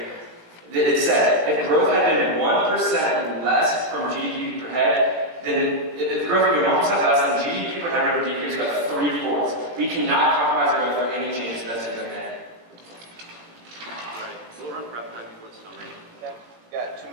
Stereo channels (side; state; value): left; late; 18 ms